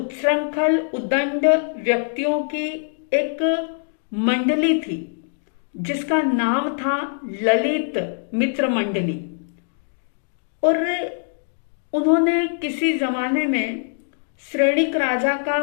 उदंड व्यक्तियों की एक मंडली थी जिसका नाम था ललित मित्र मंडली, और उन्होंने किसी जमाने में श्रेणिक राजा का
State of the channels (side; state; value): right; silent; digital silence